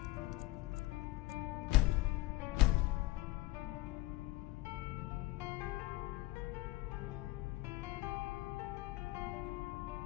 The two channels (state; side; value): quieter; right; 18.8 dB